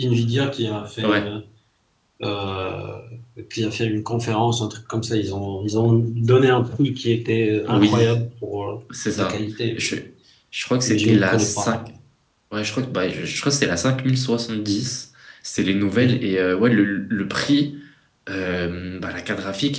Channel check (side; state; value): both; identical; correlation 1.00